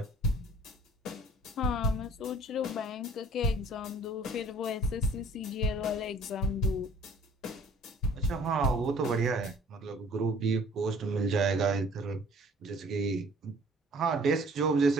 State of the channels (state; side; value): normal; both; correlation 0.53